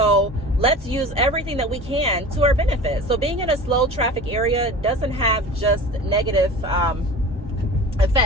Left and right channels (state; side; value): normal; both; correlation 0.36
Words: let's use everything that we can to our benefit. So being in a slow traffic area doesn't have just negative